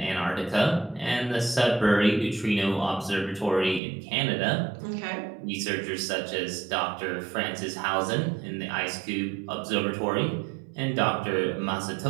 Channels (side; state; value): left; drops out; at 3.8 s